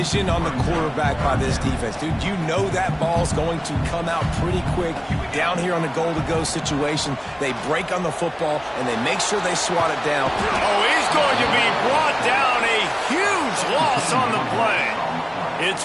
on the quarterback by this defense. Dude, you know that ball's going to come out pretty quick. Down here on the goal-to-go situation, they break on the football, and they make sure they swat it down. Oh, he's going to be brought down. A huge loss on the play. It's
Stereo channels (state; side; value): identical; both; correlation 1.00